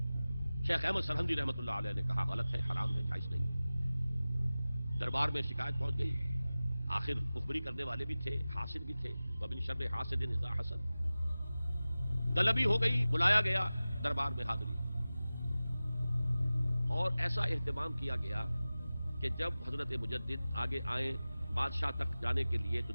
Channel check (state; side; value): inverted; both; correlation -0.97